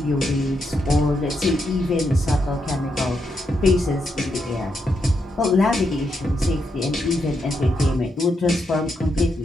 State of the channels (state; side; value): normal; both; correlation 0.81